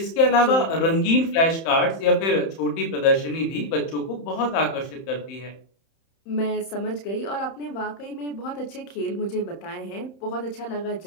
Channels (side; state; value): right; late; 31 ms